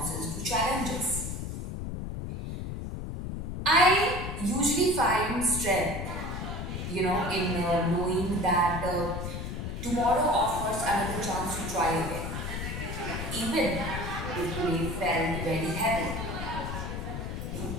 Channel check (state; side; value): noise; left; rumble, 5 dB below the sound